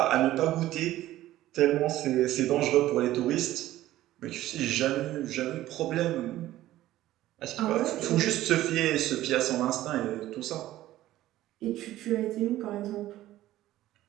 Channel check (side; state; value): left; quieter; 14.7 dB